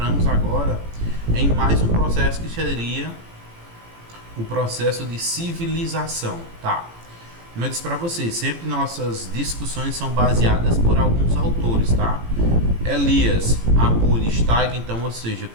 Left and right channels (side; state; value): left; late; 18 ms